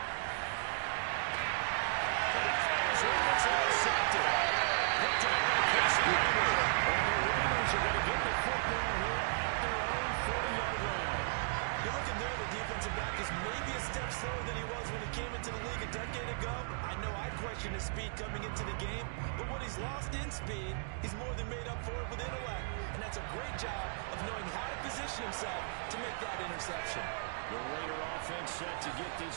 But he fires one that's intercepted. Picked up by Casey Hayward. And the Raiders are going to get the football here at their own 40-yard line. You're looking there, the defensive back is maybe a step slower than he was when he came into the league a decade ago. I know I questioned his speed coming into the game, but what he's lost in speed, he's more than made up for it with intellect. And that's a great job of knowing how to position himself to make that interception. The Raider offense set to get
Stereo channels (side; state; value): left; silent; digital silence